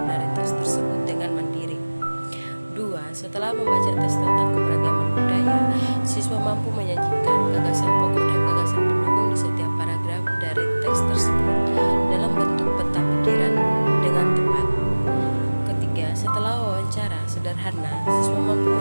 dari teks tersebut dengan mandiri. 2. Setelah membaca teks tentang keberagaman budaya, siswa mampu menyajikan gagasan pokok dan gagasan pendukung di setiap paragraf dari teks tersebut dalam bentuk peta pikiran dengan tepat. Ketiga, setelah wawancara sederhana, siswa mampu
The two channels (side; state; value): both; inverted; correlation -1.00